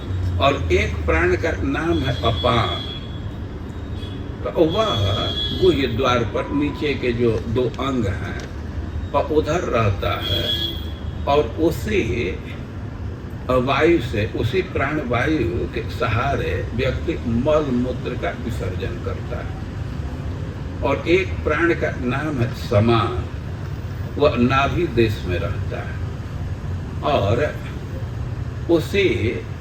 और एक प्राण का नाम है अपान, तो वह गुह्य द्वार पर नीचे के जो 2 अंग हैं और उधर रहता है, और उसी वायु से, उसी प्राण वायु के सहारे व्यक्ति मल मूत्र का विसर्जन करता है। और एक प्राण का नाम है समान, वह नाभि देश में रहता है, और उसी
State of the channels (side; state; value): both; identical; correlation 1.00